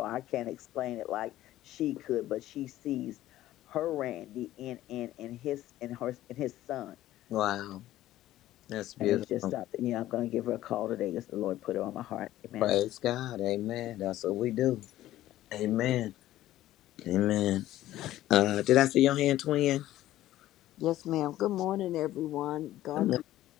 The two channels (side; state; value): right; quieter; 14.4 dB